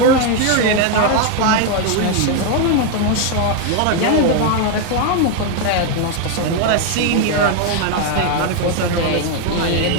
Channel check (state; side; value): different; both; correlation 0.01